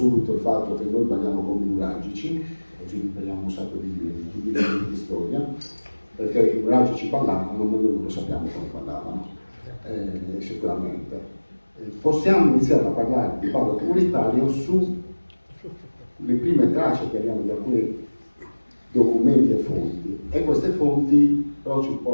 il fatto che noi balliamo come i nuragici, così impariamo un sacco di storia, perché i nuragici ballavano, ma noi non lo sappiamo come ballavano, sicuramente. Possiamo iniziare a parlare di ballo comunitario sulle prime tracce che abbiamo di alcuni documenti e fonti, e queste fonti però ci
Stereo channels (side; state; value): both; inverted; correlation -1.00